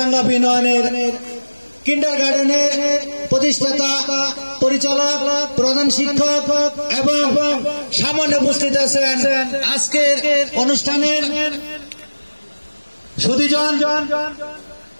বিনোয়ানের কিন্ডারগার্টেনের প্রতিষ্ঠাতা, পরিচালক, প্রধান শিক্ষক এবং সামনে উপস্থিত আছেন আজকের অনুষ্ঠানের সুধীজন।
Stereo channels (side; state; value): both; inverted; correlation -1.00